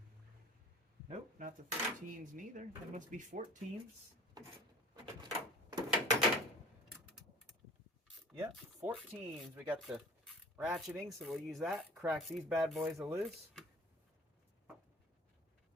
Nope, not the 13s neither. They must be 14s. Yep, 14s. We got the ratcheting, so we'll use that. Crack these bad boys loose.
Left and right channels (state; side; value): normal; both; correlation 0.45